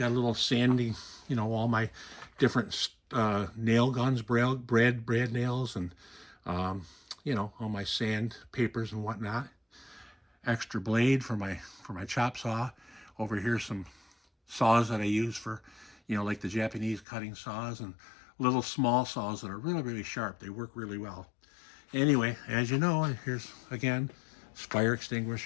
a little sandy, you know, all my different nail guns, brad nails, and you know, all my sand papers and whatnot. Extra blade for my chop saw. Over here, some saws that I use for, you know, like the Japanese cutting saws, and little small saws that are really, really sharp. They work really well. Anyway, as you know, here's again, fire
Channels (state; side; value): drops out; right; at 17.1 s